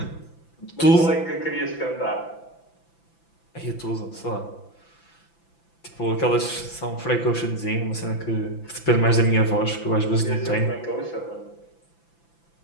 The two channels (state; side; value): late; right; 5.9 ms